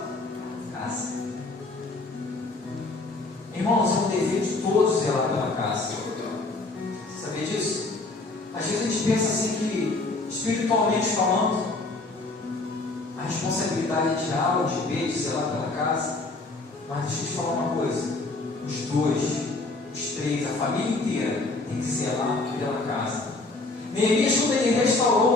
casa. Irmãos, é um dever de todos zelar pela casa. Você sabia disso? Às vezes a gente pensa assim que, espiritualmente falando, a responsabilidade é de A ou de B, de zelar pela casa. Mas deixa eu te falar uma coisa: os dois, os três, a família inteira tem que zelar pela casa. Neemias, quando ele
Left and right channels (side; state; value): right; quieter; 3.3 dB